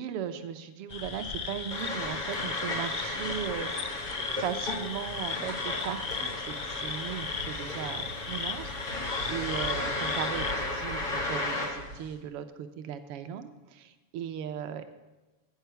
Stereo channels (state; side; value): late; left; 7.1 ms